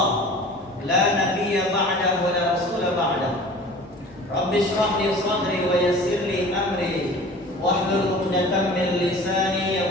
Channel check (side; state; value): both; normal; correlation 0.42